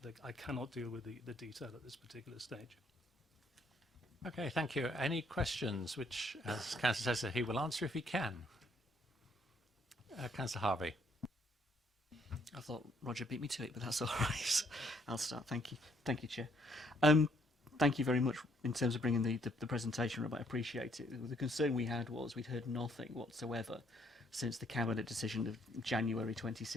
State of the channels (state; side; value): normal; both; correlation 0.68